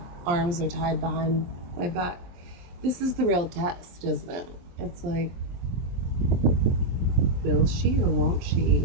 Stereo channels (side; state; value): left; late; 23 ms